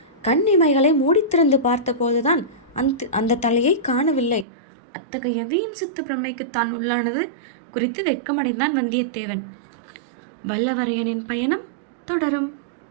கண் இமைகளை மூடித்திறந்து பார்த்த போதுதான் அந்த தலையை காணவில்லை. அத்தகைய வீண் சித்து பிரமைக்கு தான் உள்ளானது குறித்து வெட்கமடைந்தான் வந்தியத்தேவன். வல்லவரையனின் பயணம் தொடரும்.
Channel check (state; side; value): drops out; left; at 4.5 s